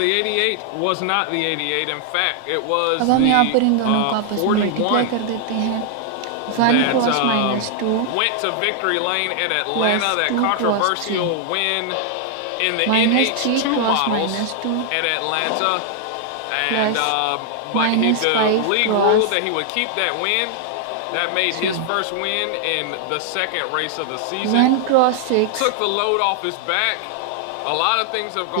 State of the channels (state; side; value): different; both; correlation 0.00